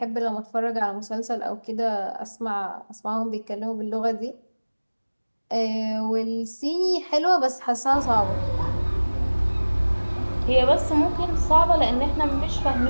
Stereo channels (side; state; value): both; inverted; correlation -1.00